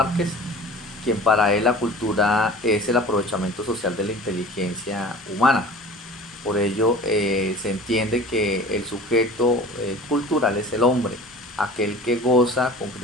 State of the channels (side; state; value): both; normal; correlation 0.41